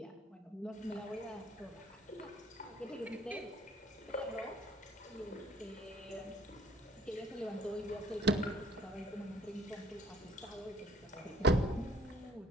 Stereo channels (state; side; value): normal; both; correlation 0.60